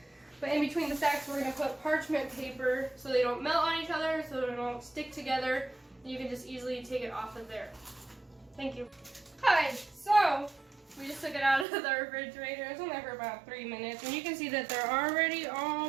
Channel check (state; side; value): drops out; left; at 11.7 s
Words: But in between the stacks, we're going to put parchment paper so they don't melt on each other, so they don't stick together. You can just easily take it off of there. Thank you. Hi, so we just took it out of the refrigerator. It's only for about 3 minutes, and you can see that they're already